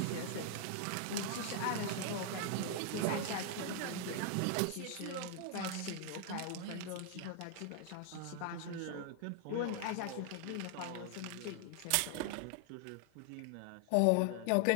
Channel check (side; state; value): both; different; correlation 0.00